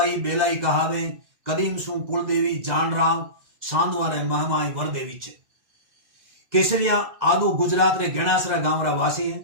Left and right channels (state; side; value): late; left; 2.0 ms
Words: बेलाई कहावे कदीम सु कुलदेवी जान राव सांदवा रे महमाई वरदेवी छे। केसरिया आदू गुजरात रे गेणासरा गांव रा वासी है।